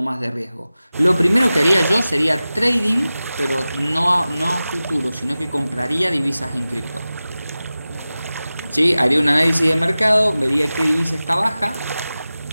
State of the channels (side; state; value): both; inverted; correlation -0.96